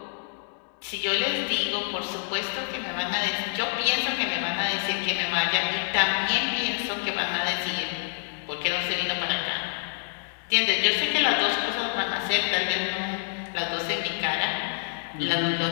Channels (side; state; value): right; silent; digital silence